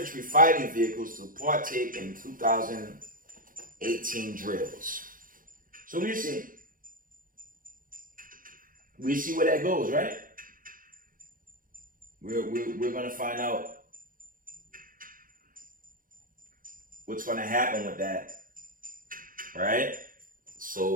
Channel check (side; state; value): left; late; 0.40 ms